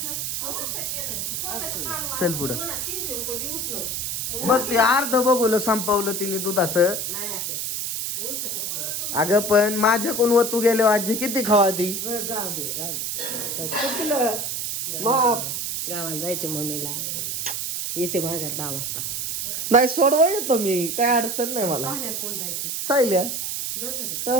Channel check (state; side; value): noise; right; hiss, 2 dB below the sound